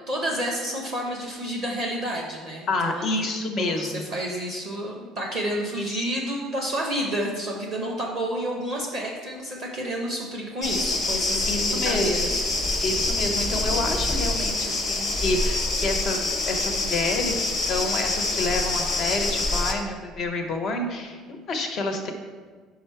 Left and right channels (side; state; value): both; normal; correlation 0.60